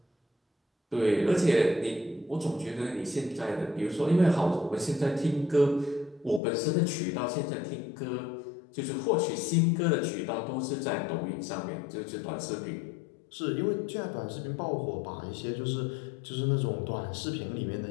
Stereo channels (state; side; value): drops out; right; at 6.4 s